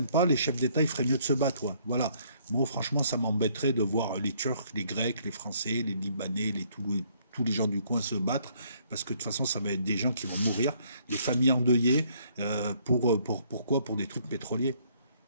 pas, les chefs d'État, il ferait mieux de se battre. Ouais. Voilà. Moi, franchement, ça m'embêterait de voir les Turcs, les Grecs, les Français, les Libanais, tous les gens du coin se battre, parce que de toute façon, ça va être des gens qui vont mourir, des familles endeuillées, pourquoi? Pour des trucs pétroliers.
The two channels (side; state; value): both; inverted; correlation -0.65